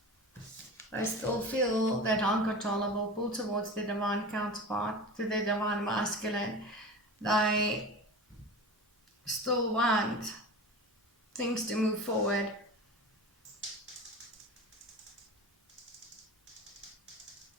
They still feel that uncontrollable pull towards their divine counterpart, to their divine masculine. They still want things to move forward.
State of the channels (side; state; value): both; normal; correlation 0.32